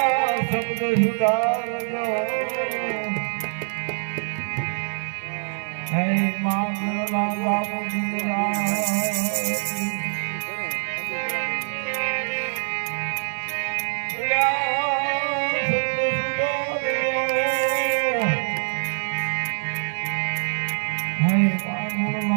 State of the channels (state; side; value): silent; left; digital silence